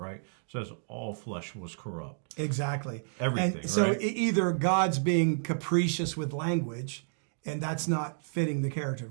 It says all flesh was corrupt. Exactly. Everything, and so right? Either God's being capricious with language, and that's not fitting the character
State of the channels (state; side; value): silent; left; digital silence